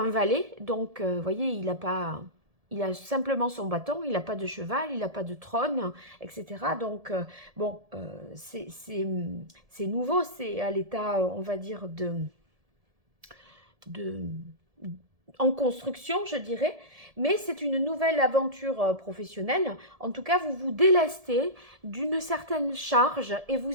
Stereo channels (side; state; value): left; late; 1.7 ms